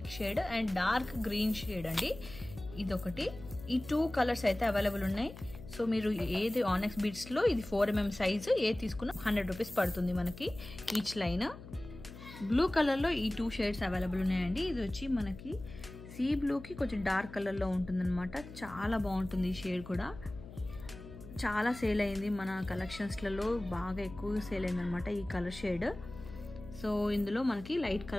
shade and dark green shade అండి, ఇదొకటి. ఈ 2 కలర్స్ అయితే అవైలబుల్ ఉన్నాయి. సో మీరు ఏది ఆనెక్స్ బీడ్స్లో ఇది 4mm సైజు ఏ తీసుకున్నా 100 రూపీస్ పడుతుంది మనకి ఈచ్ లైన్. బ్లూ కలర్లో ఈ 2 షేడ్స్ అవైలబుల్ ఉన్నాయండి. ఇది వచ్చి మనకి సీ బ్లూకి కొంచెం డార్క్ కలర్లో ఉంటుందన్నమాట. చాలా బాగుంటుంది ఈ షేడ్ కూడా. చాలా సేల్ అయింది మన కలెక్షన్స్లలో, బాగా ఎక్కువగా సేల్ అయింది అనమాట ఈ కలర్ షేడ్. సో ఇందులో మనకి లైట్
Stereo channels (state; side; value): noise; left; hum, 15 dB below the sound